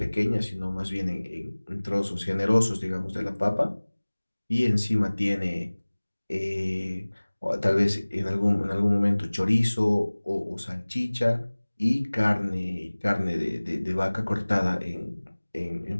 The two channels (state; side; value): inverted; both; correlation -1.00